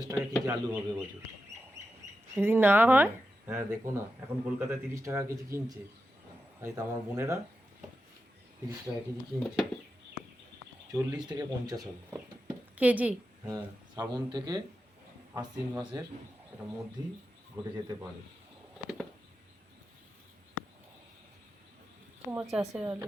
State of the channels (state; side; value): normal; both; correlation 0.90